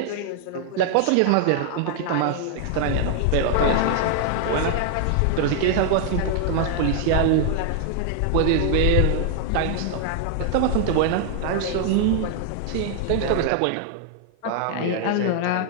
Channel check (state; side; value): different; both; correlation 0.00